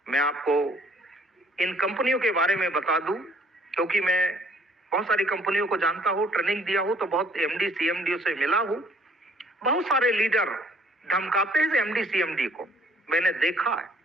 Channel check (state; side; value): normal; both; correlation 0.60